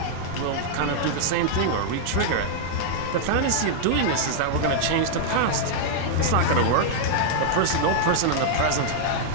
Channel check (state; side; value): different; both; correlation -0.01